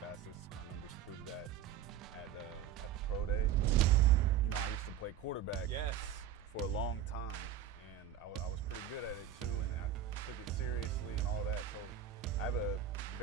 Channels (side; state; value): left; quieter; 9.6 dB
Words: My numbers prove that at the pro day. I used to play quarterback for a long time, and I was pretty good at it too, and I took it seriously and all that. So I have a